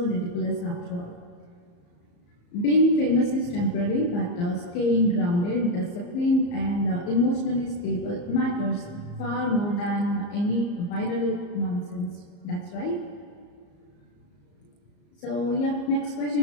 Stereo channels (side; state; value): right; late; 34 ms